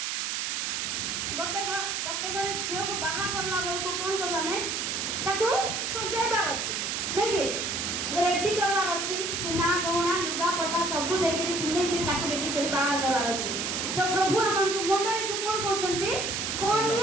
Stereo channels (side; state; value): right; noise; hiss, 1 dB below the sound